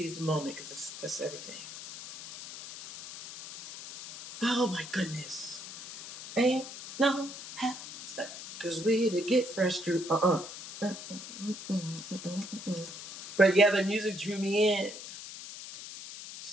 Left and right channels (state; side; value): noise; left; hiss, 12 dB below the sound